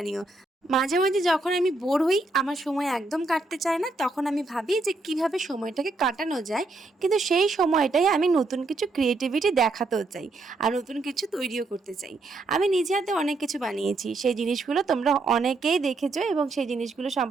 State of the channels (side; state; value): left; quieter; 3.3 dB